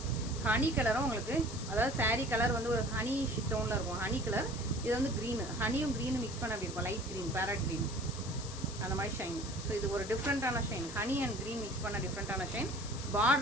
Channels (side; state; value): left; noise; hiss, 11 dB below the sound